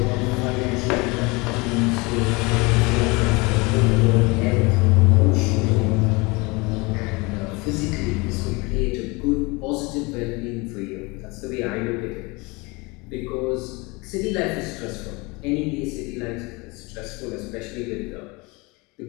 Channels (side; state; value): right; quieter; 26.1 dB